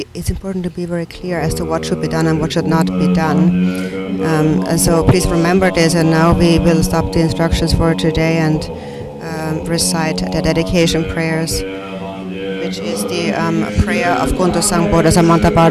it's important to be very clear as to what should be done and what should not be done. And so please remember this, and now we will stop the instructions for today and recite the dedication prayers, which is the prayer of Kuntu Sangpo, the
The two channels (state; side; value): identical; both; correlation 1.00